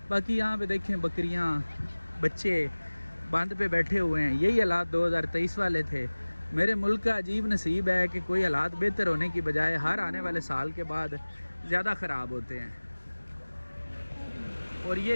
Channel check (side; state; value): both; inverted; correlation -1.00